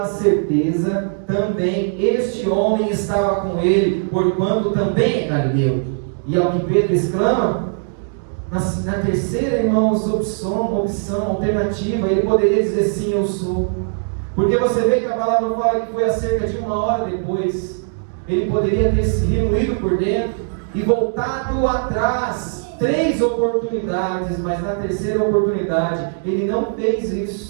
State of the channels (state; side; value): silent; left; digital silence